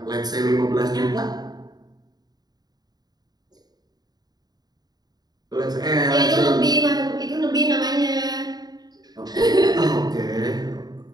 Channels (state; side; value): late; left; 0.19 ms